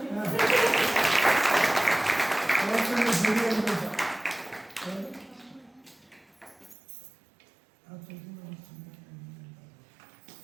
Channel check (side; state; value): left; drops out; at 6.8 s